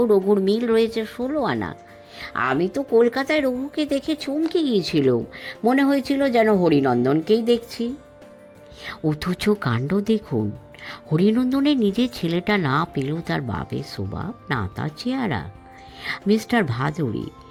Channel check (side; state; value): both; identical; correlation 1.00